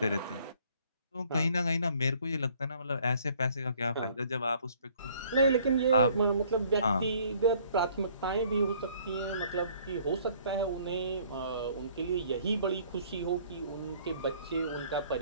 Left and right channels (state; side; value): inverted; both; correlation -0.59